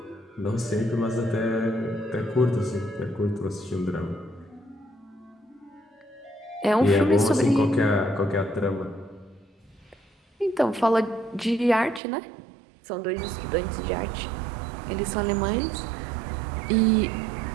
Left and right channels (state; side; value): drops out; left; at 12.0 s